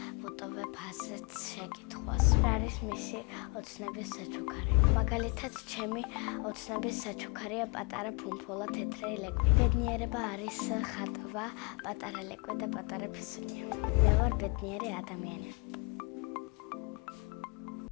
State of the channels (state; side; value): quieter; right; 29.7 dB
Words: ვუტოვებ ასეთ შეკითხვას. რა არის მისი ოცნების საჩუქარი? მაგალითად, ჩემი ოცნების საჩუქარია პატარა ფუმფულა, თეთრი ლეკვი. ბედნიერება არის ხატვა, პატარა ლეკვი და პატარა ფისუნია. მე ვარ ბედნიერი ადამიანი.